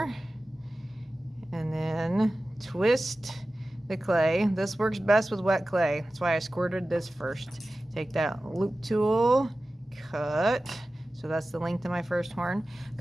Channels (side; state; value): both; normal; correlation 0.95